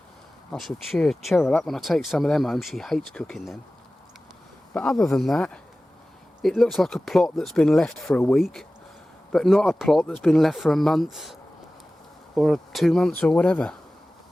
I shall cheer Cheryl up when I take some of them home. She hates cooking them. But other than that, it looks like a plot that's been left for a week, but not a plot that's been left for a month or 2 months or whatever.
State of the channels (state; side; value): normal; both; correlation 0.97